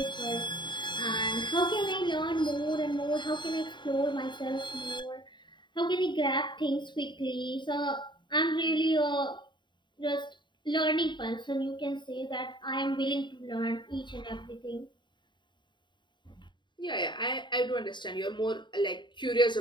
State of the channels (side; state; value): right; late; 0.22 ms